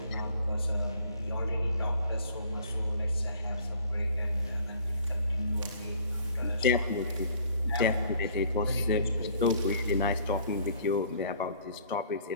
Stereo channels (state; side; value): inverted; both; correlation -0.55